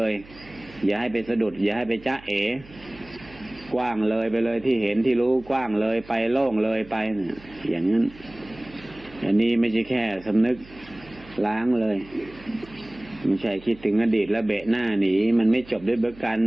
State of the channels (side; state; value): right; noise; hum, 21 dB below the sound